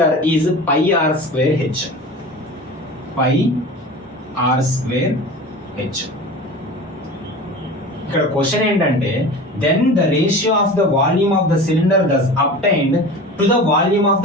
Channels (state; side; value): normal; both; correlation 0.35